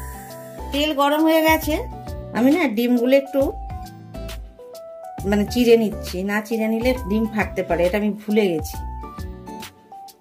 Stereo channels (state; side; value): identical; both; correlation 1.00